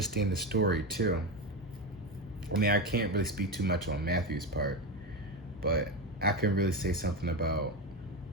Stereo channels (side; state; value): both; normal; correlation 0.16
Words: the story too. I mean, I can't really speak too much on Matthew's part, but I can really say something about